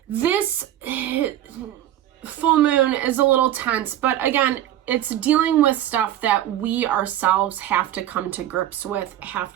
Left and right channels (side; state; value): left; quieter; 12.4 dB